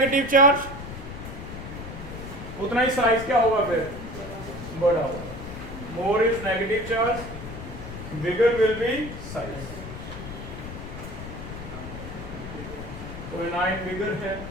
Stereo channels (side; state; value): left; noise; rumble, 10 dB below the sound